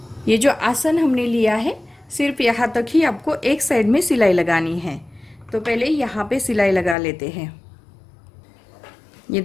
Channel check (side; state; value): right; drops out; at 7.0 s